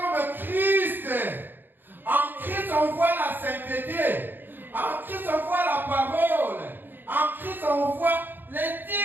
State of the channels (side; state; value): left; late; 0.093 ms